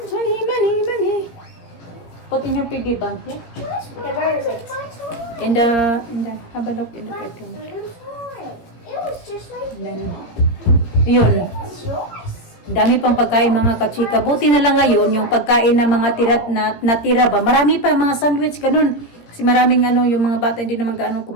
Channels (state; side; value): late; right; 17 ms